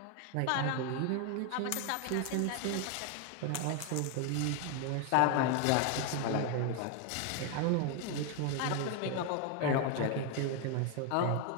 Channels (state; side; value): different; both; correlation 0.01